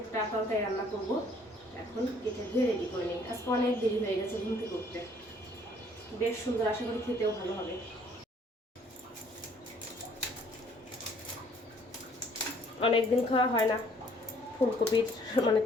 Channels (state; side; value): normal; both; correlation 0.60